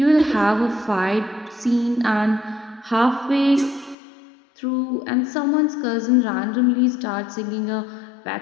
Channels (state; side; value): drops out; right; at 4.0 s